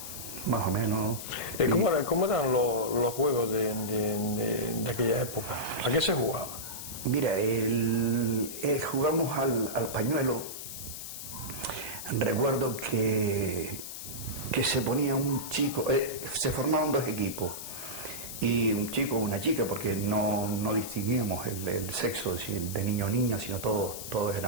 más o menos. ¿Cómo eran los juegos de aquella época? ¿A qué se jugaba? Mira, jugamos al pañuelo. Recuerdo que se ponía un chico, se formaban dos equipos, y un chico o una chica, porque no distinguíamos el sexo de niño o niña, sino todos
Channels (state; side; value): noise; left; hiss, 9 dB below the sound